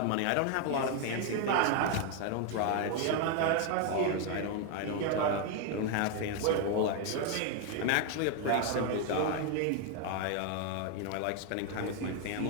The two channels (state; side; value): different; both; correlation 0.01